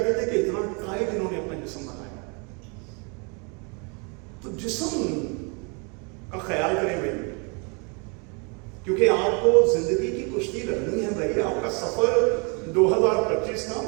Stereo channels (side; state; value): left; quieter; 33.9 dB